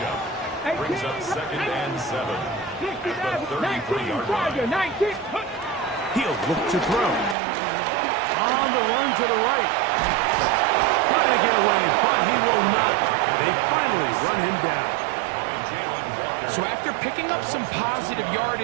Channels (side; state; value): left; drops out; at 7.4 s